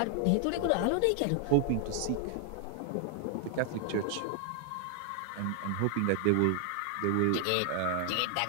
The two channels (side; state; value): both; different; correlation 0.00